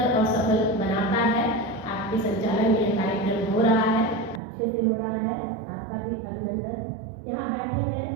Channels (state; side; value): drops out; left; at 4.4 s